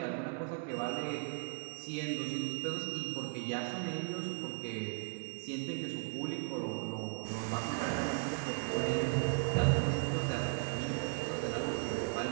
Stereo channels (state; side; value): quieter; left; 38.8 dB